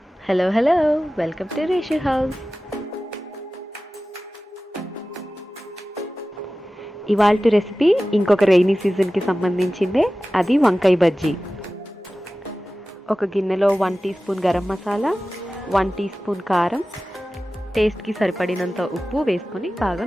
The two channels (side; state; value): both; normal; correlation 0.96